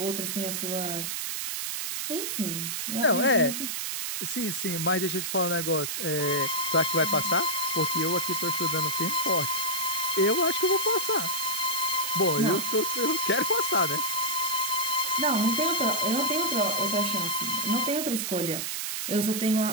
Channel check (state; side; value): noise; right; hiss, 3 dB below the sound